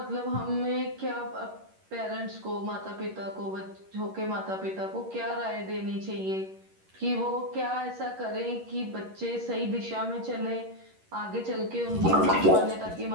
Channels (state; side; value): late; left; 11 ms